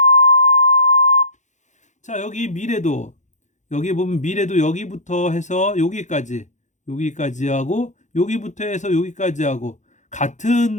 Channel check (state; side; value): late; right; 0.35 ms